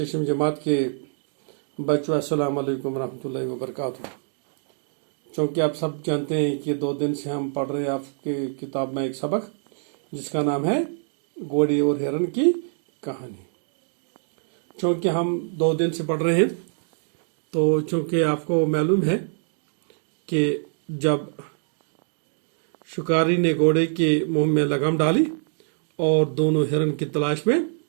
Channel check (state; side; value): silent; left; digital silence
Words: جماعت کے بچوں السلام علیکم ورحمۃ اللہ وبرکاتہ۔ چونکہ آپ سب جانتے ہیں کہ 2 دن سے ہم پڑھ رہے ہیں آپ کے کتاب میں ایک سبق جس کا نام ہے گھوڑے اور ہرن کی کہانی۔ چونکہ ہم 2 دن سے پڑھ رہے ہیں تو چونکہ آپ کو معلوم ہے کہ جب شکاری نے گھوڑے کے منہ میں لگام ڈالی اور دونوں ہرن کی تلاش میں